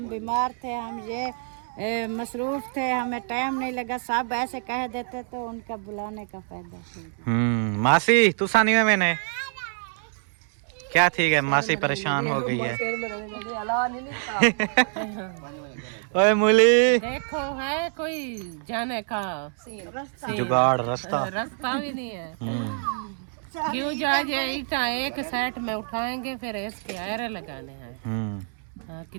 बीमार थे, हम ये मसरूफ थे, हमें टाइम नहीं लगा, सब ऐसे कह देते तो उनका बुलाने का फायदा। मासी तू सानी में मैंने क्या ठीक है, मासी परेशान हो गई है। ओए मूली देखो है कोई जाने का जुगाड़ रास्ता रास्ता भी नहीं है। क्यों जा ईटा एक सेट में उठाएंगे फिर इसके आयरे लगाने हैं। हाँ,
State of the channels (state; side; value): silent; left; 61 dB below the other